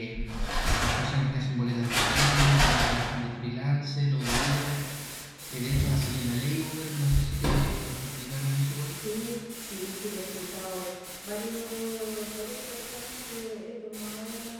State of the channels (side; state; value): both; identical; correlation 1.00